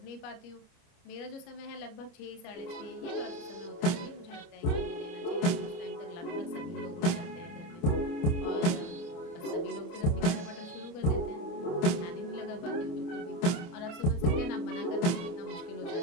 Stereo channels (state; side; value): late; right; 28 ms